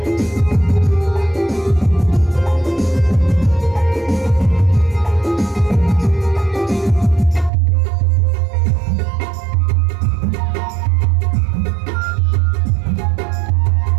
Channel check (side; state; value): left; drops out; at 7.5 s